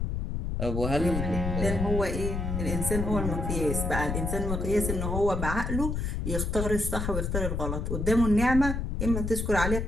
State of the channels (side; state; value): left; noise; rumble, 2 dB below the sound